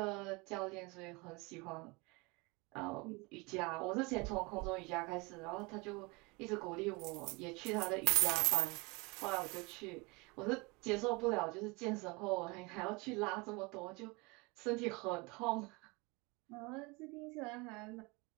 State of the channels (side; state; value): left; quieter; 26.8 dB